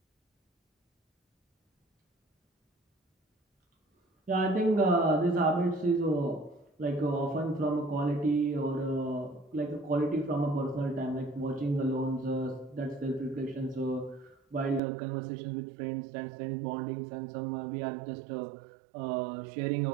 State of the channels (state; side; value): drops out; left; at 14.8 s